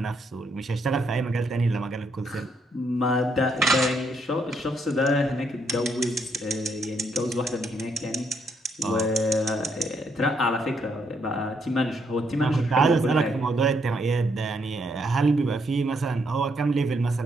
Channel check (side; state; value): both; normal; correlation 0.74